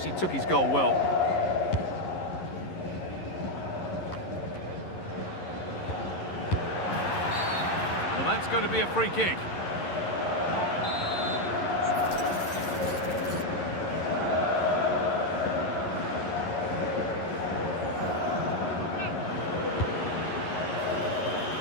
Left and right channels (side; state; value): right; late; 11 ms